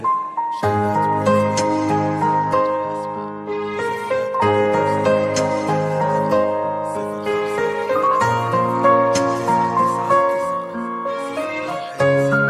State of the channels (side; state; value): both; identical; correlation 1.00